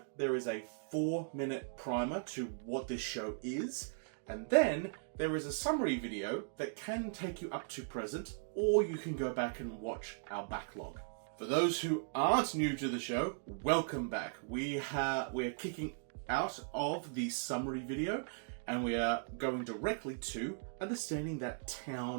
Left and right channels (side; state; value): left; silent; digital silence